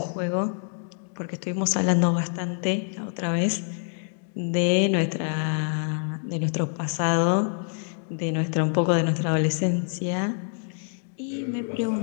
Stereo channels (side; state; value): right; silent; 56 dB below the other